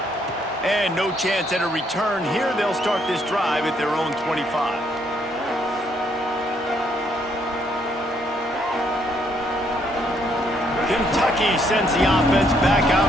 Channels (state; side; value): normal; both; correlation 0.71